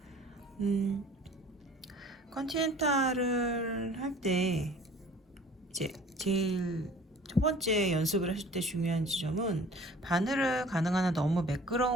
컨티넨탈을 할 때 이제 제일 첫 번째 연습을 하실 때 중요한 지점은 바늘을 가능한 한 너무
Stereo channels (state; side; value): normal; both; correlation 0.48